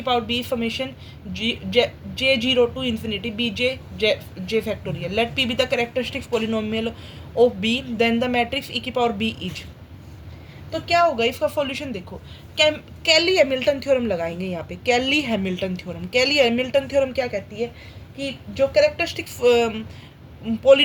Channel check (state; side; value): identical; both; correlation 1.00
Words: power B formation J zero to infinity B J factorial. Let P be the characteristics polynomial of B then the matrix E की power B is. तो क्या होगा इसका solution देखो। कैली Hamilton theorem लगाएंगे यहाँ पे। कैली हैमिल्टन थ्योरम क्या कहती है कि जो कैरेक्टरिस्टिक्स